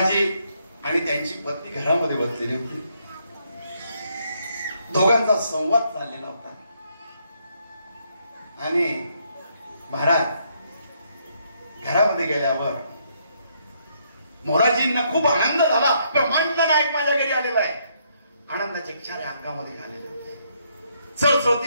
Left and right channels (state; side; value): inverted; both; correlation -0.73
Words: आणि त्यांची पत्नी घरामध्ये बसलेली होती. दोघांचा संवाद चाललेला होता. आणि महाराज घरामध्ये गेल्यावर मोराजींना खूप आनंद झाला. ब्रह्मांड नायक माझ्या घरी आलेला आहे. आनंदाचे क्षारे अंगामध्ये आलेले होते.